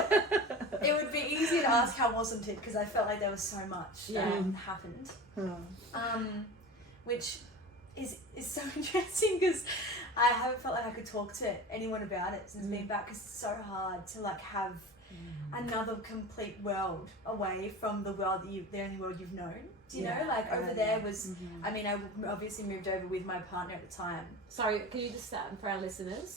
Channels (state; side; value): normal; both; correlation 0.33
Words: It would be easy to ask how wasn't it, because I felt like there was so much that happened. Which is so interesting, because I haven't felt like I could talk to anyone about it since being back, because it's so hard to like have another complete world away from the world that the only world you've known. Do you know? Like over there was, I mean, I obviously moved over with my partner at the time. Sorry, can you just start for our